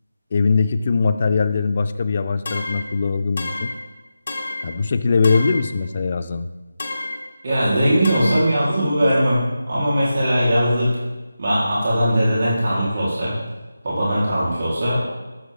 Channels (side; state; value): both; inverted; correlation -0.90